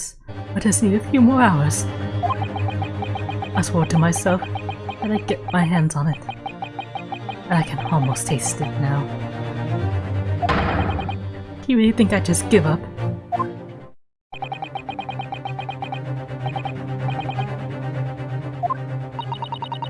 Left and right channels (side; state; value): both; identical; correlation 1.00